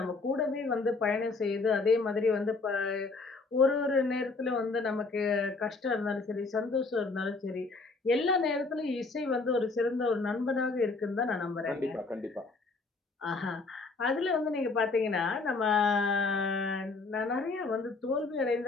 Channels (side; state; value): right; quieter; 3.9 dB